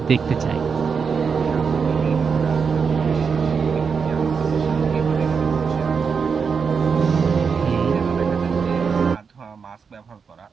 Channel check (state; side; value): quieter; left; 5.8 dB